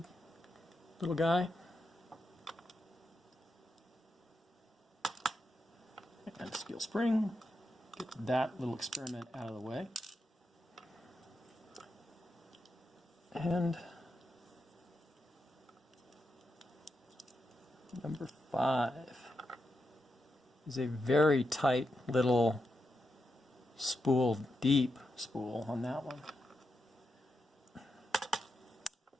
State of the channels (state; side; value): normal; both; correlation 0.86